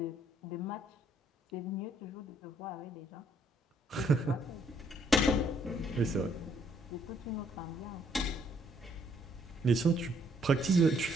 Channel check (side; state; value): both; normal; correlation 0.68